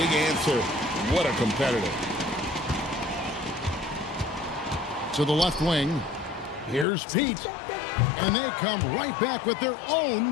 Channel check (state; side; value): drops out; right; at 6.9 s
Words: answer. What a competitor. To the left wing. Here's Pete. And they come right back with their